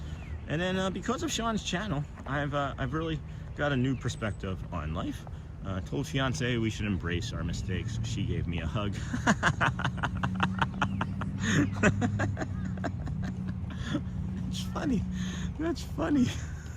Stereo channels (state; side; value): identical; both; correlation 1.00